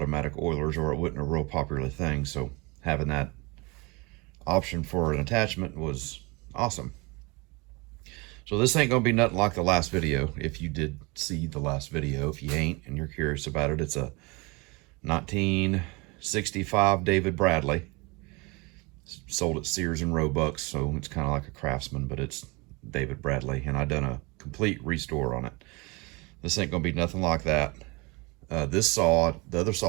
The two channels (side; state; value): left; quieter; 26.9 dB